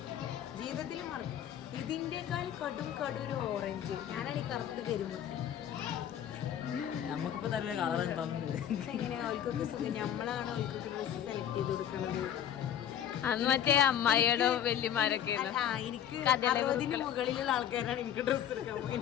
ജീവിതത്തിൽ മറക്കും. ഇതിന്റെക്കാൾ കടും ഒരു ഓറഞ്ച്. ഞാനാണ് ഈ കറുത്ത് കരിമുട്ടി. നമുക്കിപ്പോ നല്ല കളർ എങ്ങനെയാ അവൾക്കൊക്കെ സുഖം. നമ്മളാണ് അവൾക്കൊക്കെ ഡ്രസ്സ് സെലക്ട് ചെയ്ത് കൊടുക്കുന്നത്. അന്ന് മറ്റേ അമ്മായിയുടെ വല്യമാരൊക്കെ എനിക്ക് 60 മുകളിലുള്ള ആൾക്കാരാണ് എനിക്ക് ഡ്രസ്സ് എടുക്കാൻ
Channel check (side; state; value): right; quieter; 10.1 dB